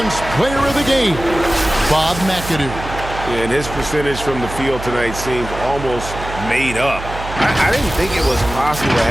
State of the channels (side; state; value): right; noise; hum, 10 dB below the sound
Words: Player of the Game, Bob McAdoo. And his percentage from the field tonight seems almost made up. I didn't think it was possible to